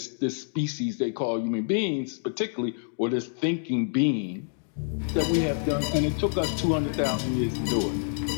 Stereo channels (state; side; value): silent; right; digital silence